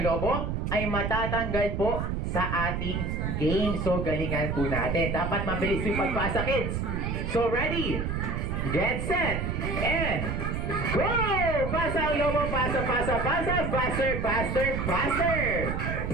lobo ay matatanggal po sa ating game. So, galingan po natin. Dapat mabilis yung pagpasa, kids. So, ready? Get set! And go! Pasa ang lobo, pasa, pasa, pasa, faster, faster, faster!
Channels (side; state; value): right; noise; rumble, 2 dB below the sound